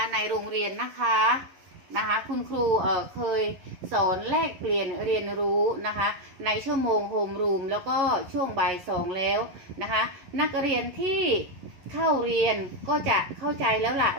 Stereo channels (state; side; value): late; left; 11 ms